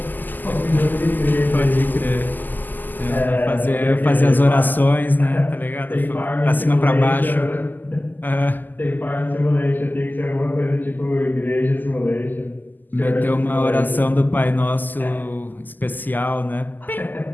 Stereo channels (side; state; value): right; late; 0.087 ms